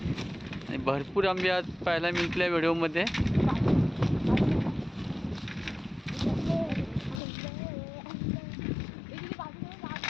भरपूर आंबे आज पाहायला मिळतले व्हिडिओमध्ये.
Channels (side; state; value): right; drops out; at 7.2 s